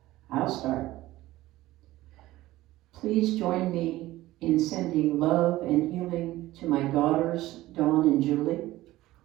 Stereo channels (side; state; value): left; quieter; 16.7 dB